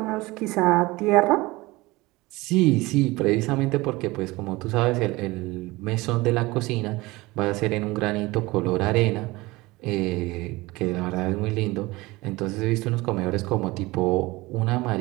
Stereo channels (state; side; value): quieter; left; 21.2 dB